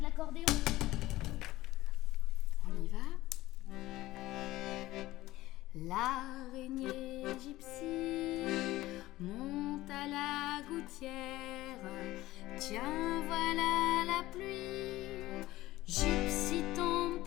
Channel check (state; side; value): quieter; right; 17.0 dB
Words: On y va. L'araignée gypsy monte à la gouttière. Tiens, voilà la pluie. Gypsy tombe